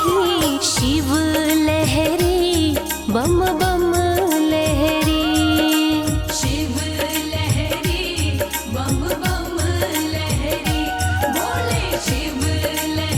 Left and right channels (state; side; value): identical; both; correlation 1.00